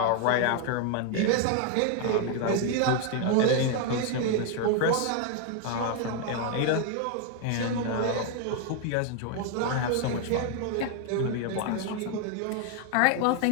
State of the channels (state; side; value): different; both; correlation 0.01